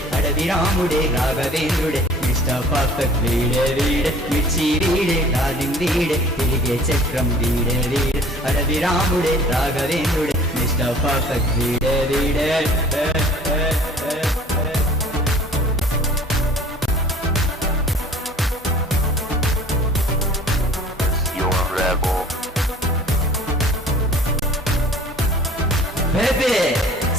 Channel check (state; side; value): normal; both; correlation 0.49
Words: అడవి రాముడే రాఘవేంద్రుడే మిస్టర్ పర్ఫెక్ట్ వీడే వీడే మిర్చి వీడే డార్లింగ్ వీడే తిరిగే చక్రం వీడే వీడే అడవి రాముడే రాఘవేంద్రుడే మిస్టర్ పర్ఫెక్ట్ వీడే వీడే You're a rebel. Baby,